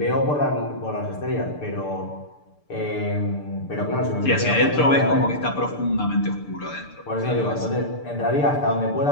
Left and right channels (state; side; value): late; right; 6.8 ms